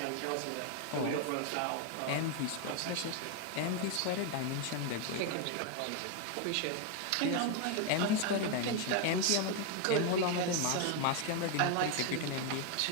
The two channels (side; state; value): both; different; correlation 0.01